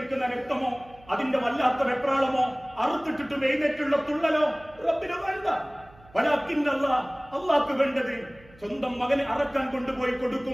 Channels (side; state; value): right; noise; hum, 25 dB below the sound